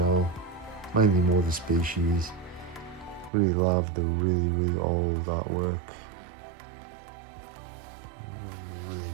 Mainly more the species. Really love the really old artwork.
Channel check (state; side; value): drops out; left; at 3.3 s